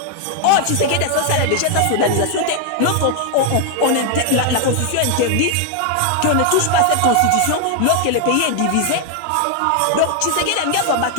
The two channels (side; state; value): both; different; correlation 0.00